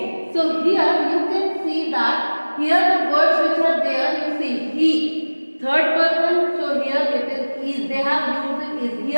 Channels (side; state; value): both; inverted; correlation -1.00